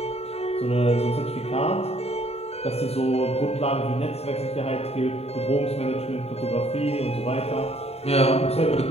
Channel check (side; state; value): right; late; 0.30 ms